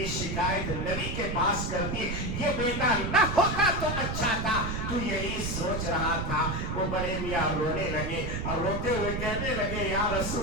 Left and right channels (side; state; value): right; noise; rumble, 3 dB below the sound